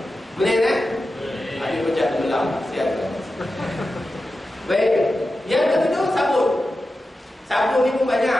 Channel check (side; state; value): both; normal; correlation 0.92